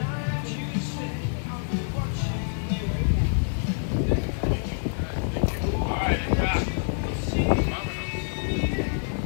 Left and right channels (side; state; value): right; silent; digital silence